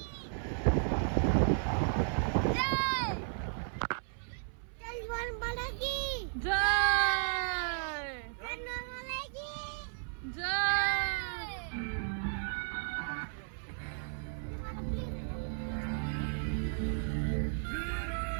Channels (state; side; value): silent; left; 55 dB below the other